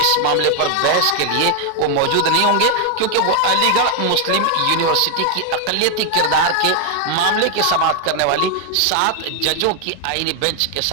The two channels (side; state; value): both; different; correlation 0.00